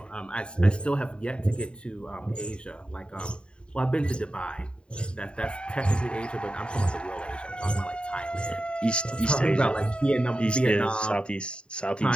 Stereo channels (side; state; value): right; late; 0.053 ms